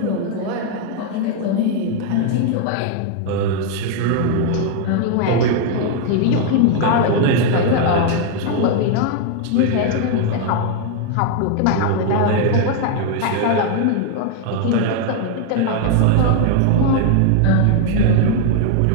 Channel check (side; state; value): both; different; correlation 0.00